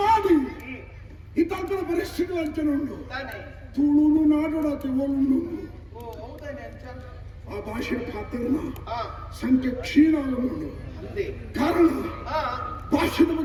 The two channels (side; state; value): both; identical; correlation 1.00